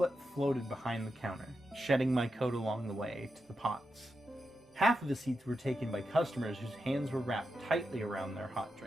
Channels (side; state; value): both; normal; correlation 0.88